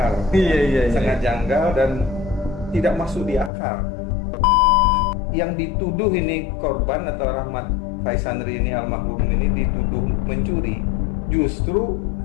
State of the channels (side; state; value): right; drops out; at 3.5 s